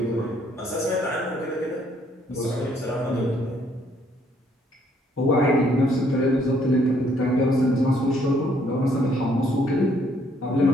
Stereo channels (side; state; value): both; normal; correlation 0.66